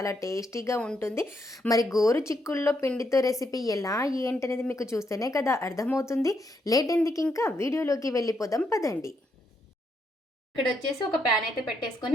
టేస్టీగా ఉంటుంది. మరి గోరు చిక్కుడులో పిండితో రెసిపీ ఎలా ఏంటనేది మీకు చూస్తేనే కదా అర్థమవుతుంది. లేట్ ఎందుకు, ఇంకా వీడియోలోకి వెళ్ళిపోదాం పదండి. ఇక్కడ వచ్చేసి ఒక ప్యాన్ అయితే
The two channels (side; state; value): both; normal; correlation 0.77